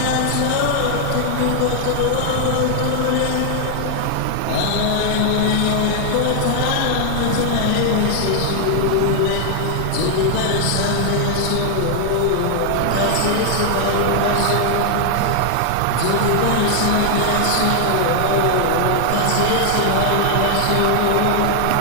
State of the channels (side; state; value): both; different; correlation 0.00